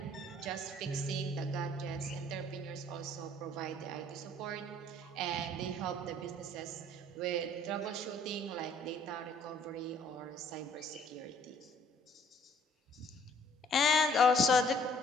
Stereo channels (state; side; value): normal; both; correlation 0.58